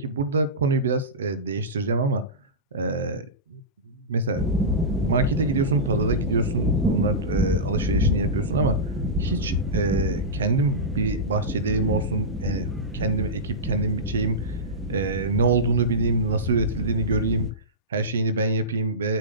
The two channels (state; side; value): normal; both; correlation -0.16